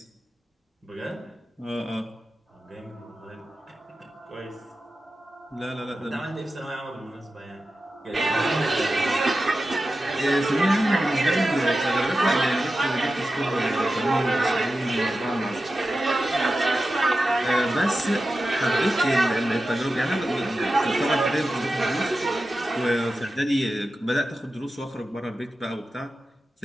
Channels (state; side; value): normal; both; correlation 0.93